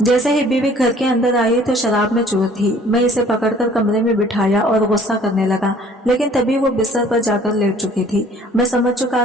जैसे ही बीवी घर के अंदर आई तो शराब में चूर थी। मैं इसे पकड़कर कमरे में बिठाया और गुस्सा करने लगा, लेकिन तभी वो बिस्तर पर जाकर लेट चुकी थी। मैं समझ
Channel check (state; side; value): normal; both; correlation 0.54